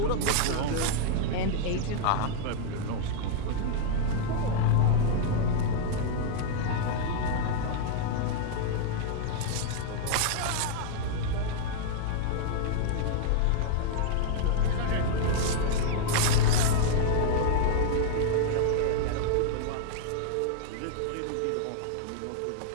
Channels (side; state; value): both; different; correlation -0.01